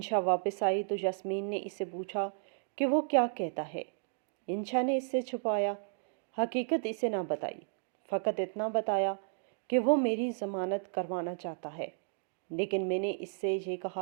واپس آئی تو یاسمین نے اس سے پوچھا کہ وہ کیا کہتا ہے۔ انشا نے اس سے چھپایا حقیقت اسے نہ بتائی، فقط اتنا بتایا کہ وہ میری ضمانت کروانا چاہتا ہے، لیکن میں نے اس سے یہ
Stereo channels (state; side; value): silent; left; digital silence